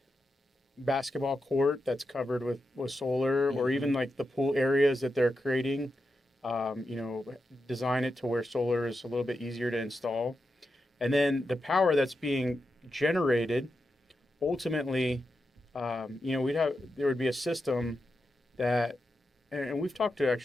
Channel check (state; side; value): normal; both; correlation 0.88